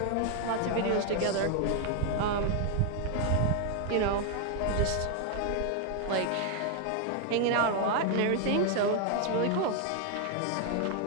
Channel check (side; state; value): both; different; correlation 0.00